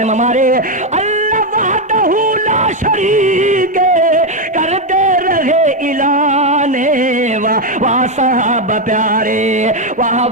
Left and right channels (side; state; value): both; normal; correlation 0.05